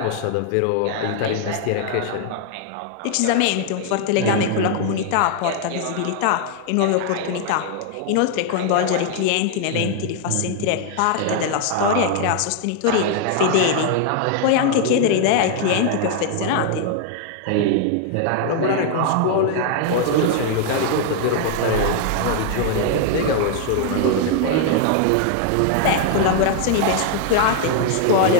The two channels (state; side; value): different; both; correlation 0.00